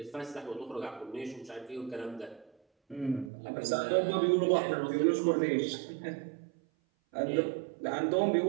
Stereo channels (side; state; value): left; drops out; at 3.3 s